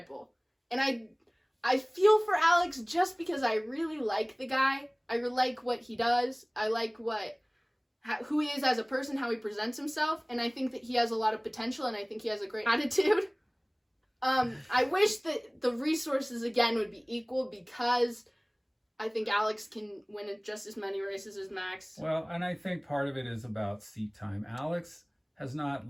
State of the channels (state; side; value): identical; both; correlation 1.00